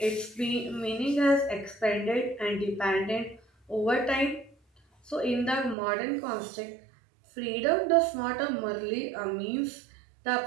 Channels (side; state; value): left; drops out; at 5.8 s